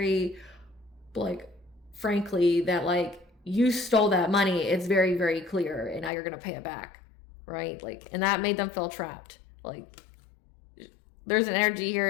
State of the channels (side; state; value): right; drops out; at 6.1 s